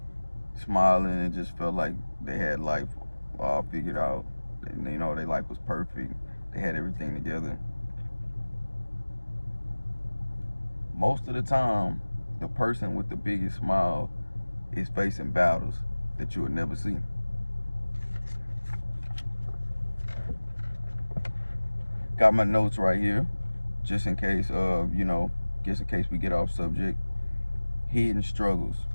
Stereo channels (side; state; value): both; inverted; correlation -1.00